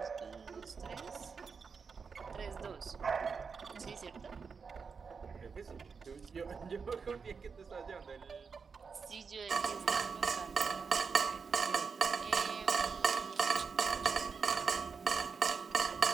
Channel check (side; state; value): left; quieter; 5.5 dB